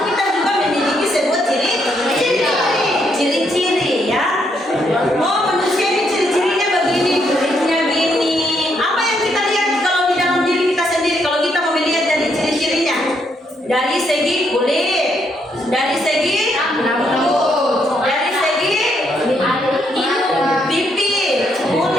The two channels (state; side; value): normal; both; correlation 0.75